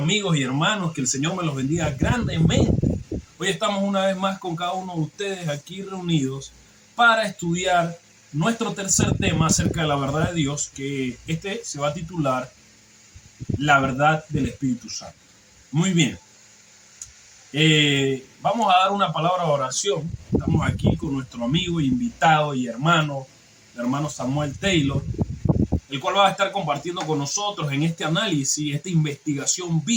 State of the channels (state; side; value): identical; both; correlation 1.00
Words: y hermanos, que el Señor me los bendiga grandemente. Hoy estamos una vez más con cada uno de ustedes aquí reunidos para estudiar nuestro tercer tema acerca de la verdad de Dios, que este se va a titular La verdad del Espíritu Santo. Muy bien. Vamos a dar una palabra de oración. Estamos aquí con nuestro amigo, invitado y hermano, el hermano Samuel Taylor, el cual va a estar compartiendo con nosotros en este análisis, esta investigación